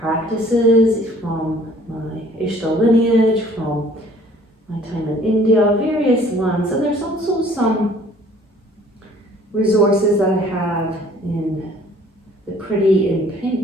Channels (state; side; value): normal; both; correlation 0.55